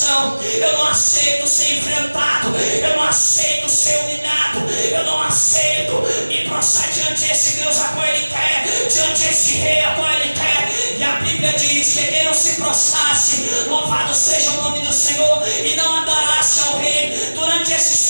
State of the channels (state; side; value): inverted; both; correlation -1.00